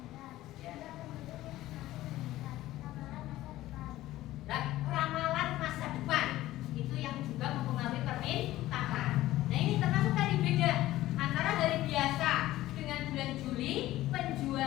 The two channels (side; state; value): right; quieter; 15.7 dB